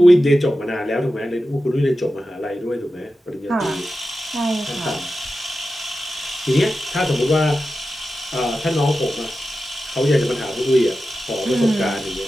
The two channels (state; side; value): normal; both; correlation 0.92